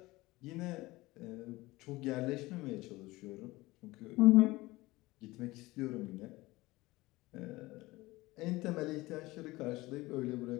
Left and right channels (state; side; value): quieter; right; 20.2 dB